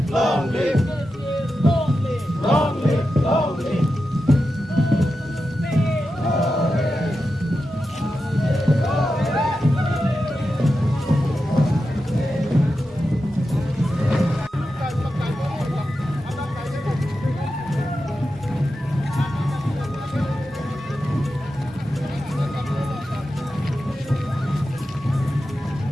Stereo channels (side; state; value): both; normal; correlation 0.90